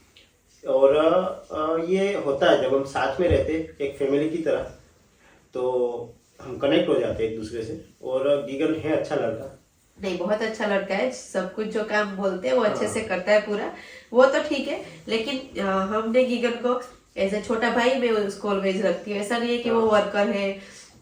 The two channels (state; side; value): identical; both; correlation 1.00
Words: और ये होता है जब हम साथ में रहते एक फैमिली की तरह, तो हम कनेक्ट हो जाते हैं एक दूसरे से। और गीगन है अच्छा लड़का, नहीं बहुत अच्छा लड़का है। सब कुछ जो काम बोलते हैं वो अच्छे से करता है पूरा, वो तो ठीक है। लेकिन हमने गीगन को एज ए छोटा भाई मैं उसको ऑलवेज रखती हूँ। ऐसा नहीं है कि वो वर्कर है